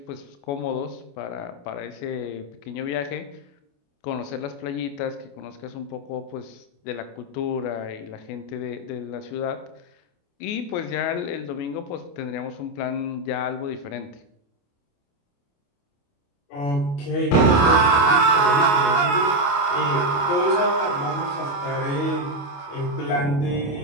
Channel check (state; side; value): late; right; 28 ms